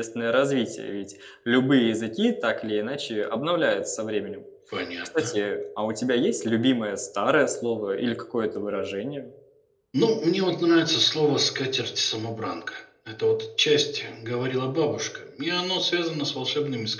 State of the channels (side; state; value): both; identical; correlation 1.00